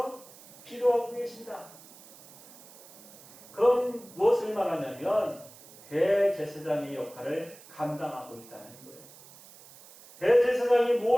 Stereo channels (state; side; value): noise; right; hiss, 21 dB below the sound